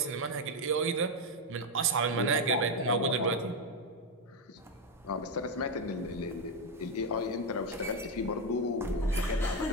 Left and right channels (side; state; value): both; normal; correlation 0.06